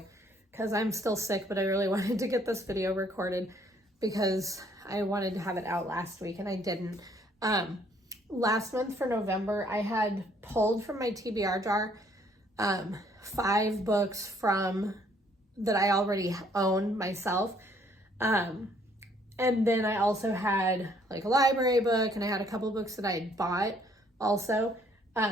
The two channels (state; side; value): normal; both; correlation 0.64